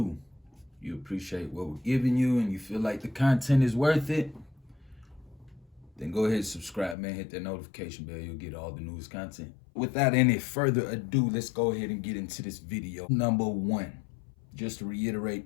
You appreciate what we're giving you and you feel like the content is worth it, then go ahead and subscribe, man. Hit that notification bell. You'll get all the newest content. Without any further ado, let's go ahead and get into this video. Number 1, just to reiterate,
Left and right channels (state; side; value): drops out; right; at 7.0 s